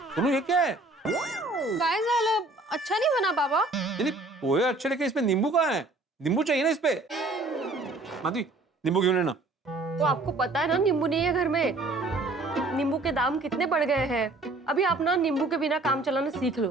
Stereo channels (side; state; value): left; quieter; 3.1 dB